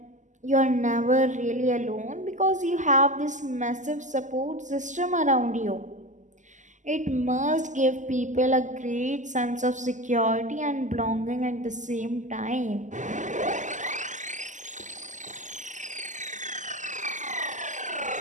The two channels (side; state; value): left; late; 0.36 ms